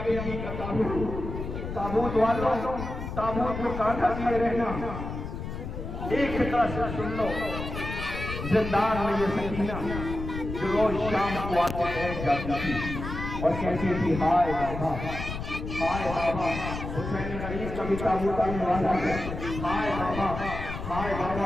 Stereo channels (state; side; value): noise; left; rumble, 7 dB below the sound